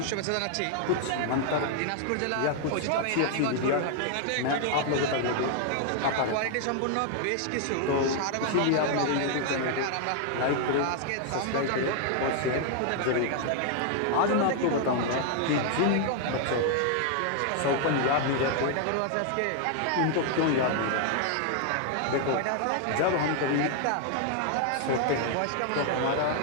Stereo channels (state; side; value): different; both; correlation 0.00